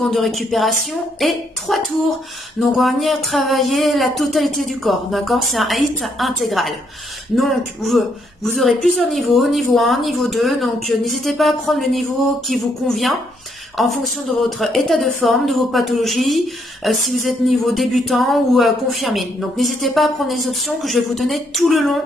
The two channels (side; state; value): both; normal; correlation 0.73